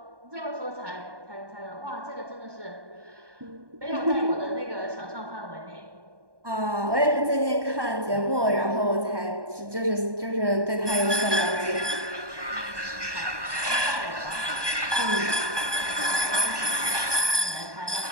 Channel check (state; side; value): late; left; 1.2 ms